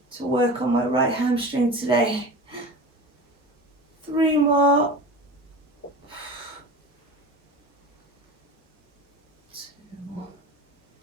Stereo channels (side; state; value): both; normal; correlation 0.33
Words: to work on my right hamstring today. 3 more. 2